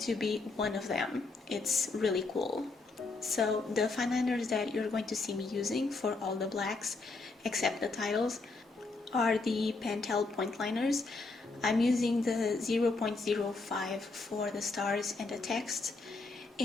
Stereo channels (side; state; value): right; quieter; 3.7 dB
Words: be one of them. It's really cool. So the fine liners that you're going to see me using for all the blacks, except the titles, are the Pentel point liners. I'm using the 0.05 for the stars and the text,